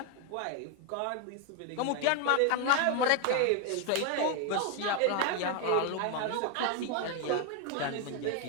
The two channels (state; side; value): different; both; correlation 0.01